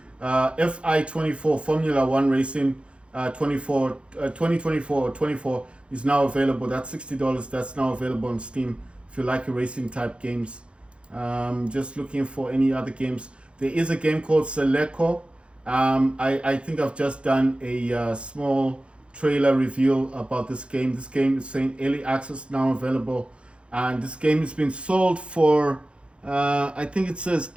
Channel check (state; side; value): late; left; 0.058 ms